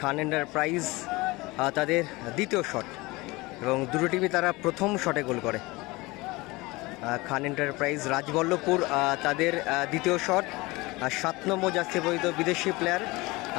এন্টারপ্রাইজ তাদের দ্বিতীয় শট এবং দুটো টিমই তারা প্রথম শটে গোল করে। খান এন্টারপ্রাইজ রাজবল্লভপুর তাদের দ্বিতীয় শট। 7 নম্বর জার্সি পরিহিত বিদেশি প্লেয়ার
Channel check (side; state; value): right; quieter; 22.5 dB